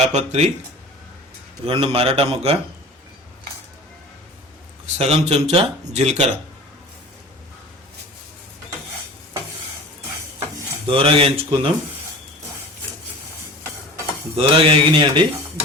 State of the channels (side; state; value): both; normal; correlation 0.40